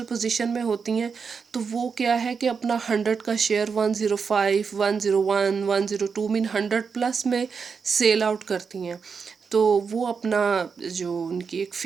पोजीशन में होती हैं तो वो क्या है कि अपना 100 का शेयर 105, 101, 102 मीन 100 प्लस में सेल आउट करती हैं। तो वो अपना जो उनकी एक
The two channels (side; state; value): left; quieter; 5.7 dB